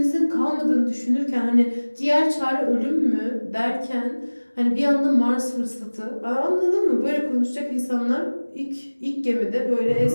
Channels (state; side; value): inverted; both; correlation -1.00